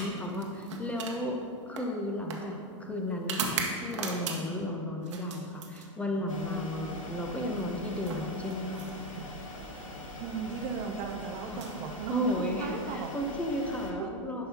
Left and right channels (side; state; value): both; normal; correlation 0.15